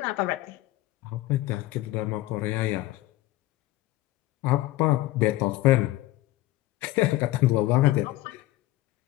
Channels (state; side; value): quieter; right; 16.9 dB